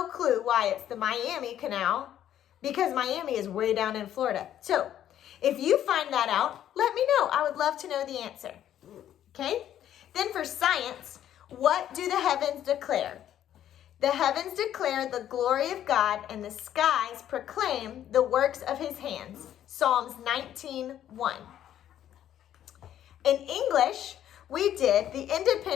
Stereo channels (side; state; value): right; quieter; 11.0 dB